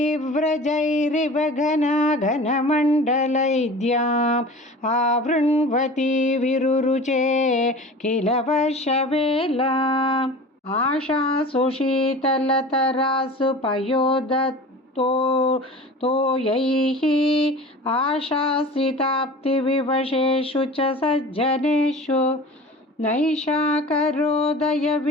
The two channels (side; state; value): both; normal; correlation 0.38